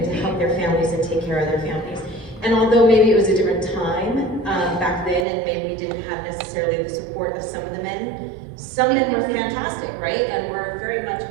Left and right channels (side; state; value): left; drops out; at 5.2 s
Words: to help their families and take care of their families. And although maybe it was a different time back then, and maybe we didn't have necessarily the support of some of the men, some men were fantastic, right? And we're very much